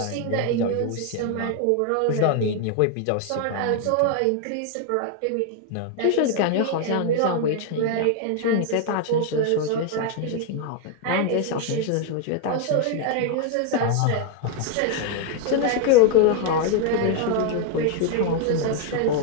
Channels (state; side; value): different; both; correlation 0.01